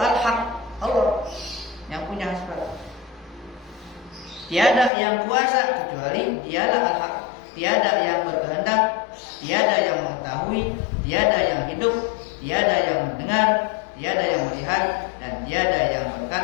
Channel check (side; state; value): right; drops out; at 4.9 s